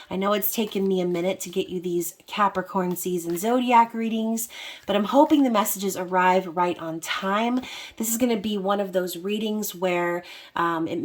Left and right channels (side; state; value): both; identical; correlation 1.00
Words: I know it's taken me a minute to get you these Capricorn season zodiac readings, but I'm hoping the messages arrive right on time. This is going to be one of those readings where it